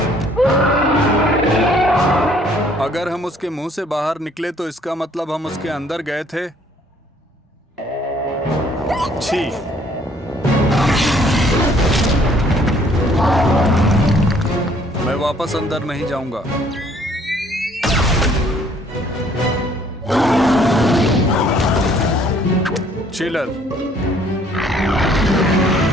अगर हम उसके मुंह से बाहर निकले तो इसका मतलब हम उसके अंदर गए थे। छी। मैं वापस अंदर नहीं जाऊंगा। चिलर।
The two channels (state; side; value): normal; both; correlation 0.61